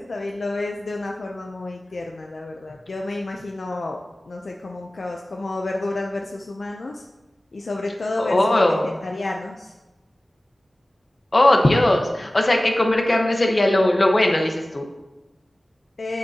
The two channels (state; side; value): normal; both; correlation 0.97